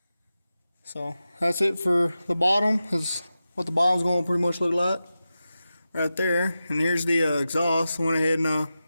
So that's it for the bottom. That's what the bottom's going to pretty much look like. Right there. And here's the exhaust. Went ahead and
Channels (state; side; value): inverted; both; correlation -0.93